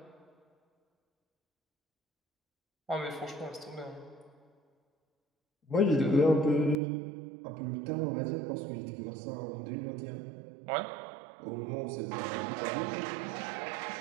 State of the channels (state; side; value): drops out; left; at 6.8 s